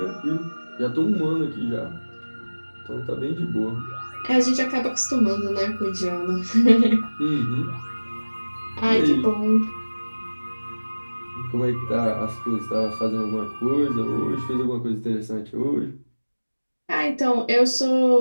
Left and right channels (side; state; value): both; inverted; correlation -1.00